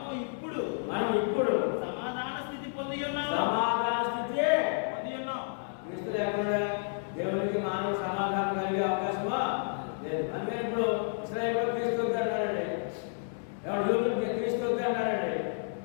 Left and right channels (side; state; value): right; silent; 57 dB below the other